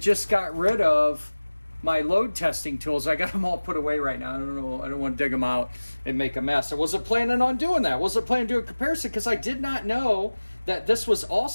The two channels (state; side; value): inverted; both; correlation -1.00